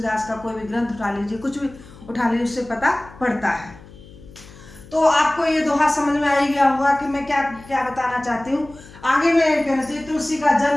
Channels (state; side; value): noise; left; hum, 20 dB below the sound